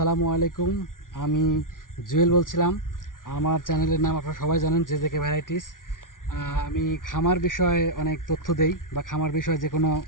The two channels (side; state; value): right; late; 0.89 ms